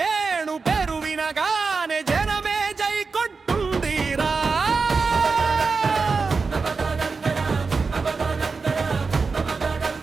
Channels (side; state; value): left; quieter; 4.6 dB